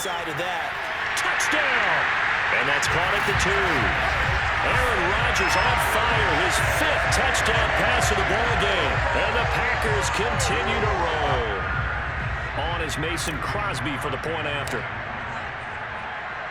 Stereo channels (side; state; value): both; identical; correlation 1.00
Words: of that, touchdown! And that's caught at the 2. Aaron Rodgers on fire, his 5th touchdown pass of the ball game. And the Packers continue to roll. On is Mason Crosby for the point after.